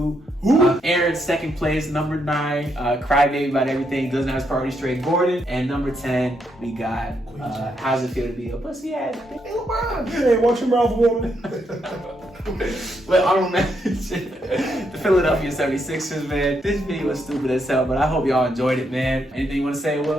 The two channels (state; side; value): normal; both; correlation 0.78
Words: Aaron, second place, number 9, crybaby about everything, doesn't have his priority straight, Gordon. And number 10, we got, how's it feel to be a pussy ass? Hey, LeBron. Hey, watch your mouth, woman. Well, honorable mention, the Philadelphia 76ers, man. This video was stupid as hell, but I hope y'all enjoyed it, man. Anything you want to say,